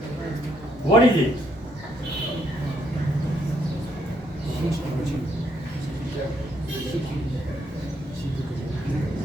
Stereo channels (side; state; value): both; normal; correlation 0.73